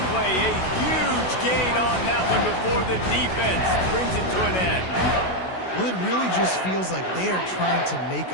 play, a huge gain on that one before the defense brings it to an end. Well, it really just feels like they are trying to make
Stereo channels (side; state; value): right; late; 16 ms